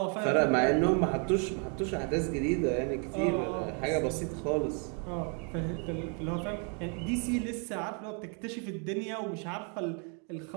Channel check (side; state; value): left; quieter; 39.1 dB